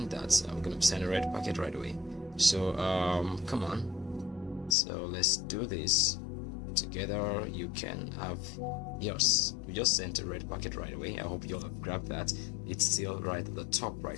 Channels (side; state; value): right; drops out; at 4.8 s